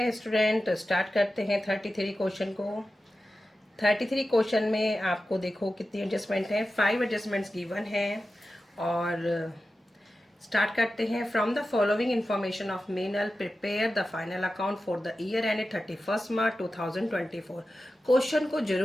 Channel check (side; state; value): both; normal; correlation 0.93